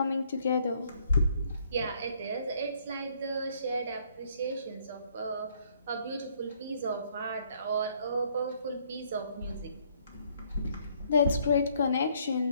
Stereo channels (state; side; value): inverted; both; correlation -0.66